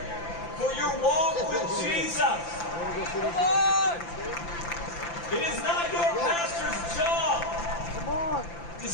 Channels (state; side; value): late; right; 5.9 ms